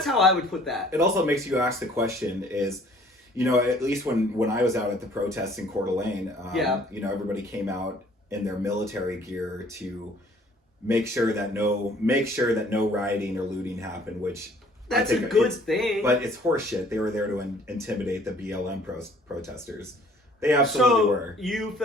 how I would put that. It also makes you ask the question is, at least when I was out at the protests in Coeur d'Alene, everybody came out in their military gear to make sure that no rioting or looting happened, which that's a good thing. But it's horseshit. They were there to intimidate the BLM protesters. They absolutely were. You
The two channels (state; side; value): normal; both; correlation 0.56